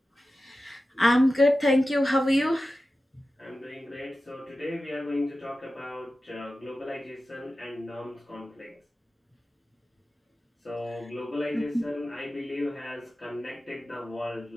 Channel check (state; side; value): normal; both; correlation 0.94